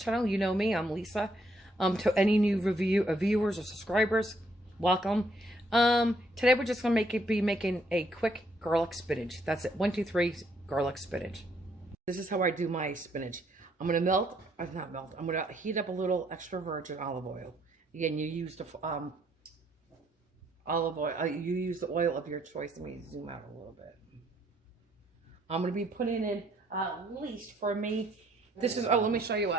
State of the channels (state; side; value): normal; both; correlation 0.70